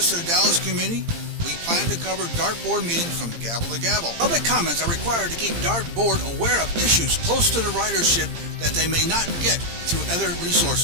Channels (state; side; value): late; left; 18 ms